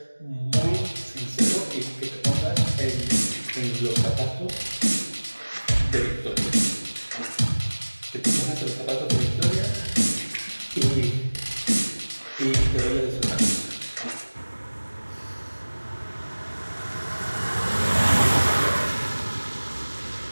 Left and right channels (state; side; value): inverted; both; correlation -1.00